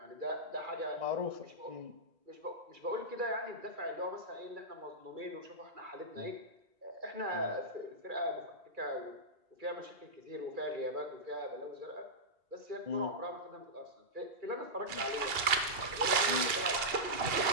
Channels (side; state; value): left; late; 2.8 ms